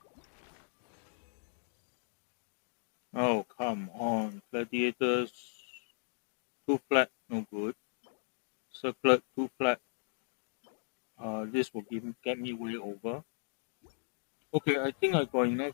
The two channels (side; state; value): right; silent; digital silence